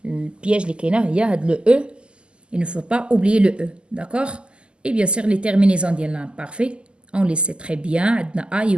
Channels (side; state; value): left; late; 0.050 ms